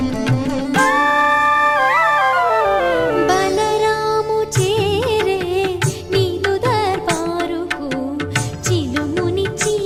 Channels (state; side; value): identical; both; correlation 1.00